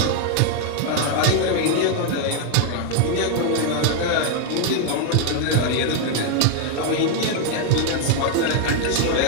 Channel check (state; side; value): different; both; correlation 0.00